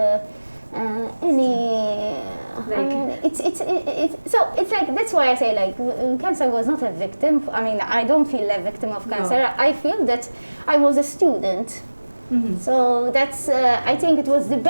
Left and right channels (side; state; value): both; inverted; correlation -1.00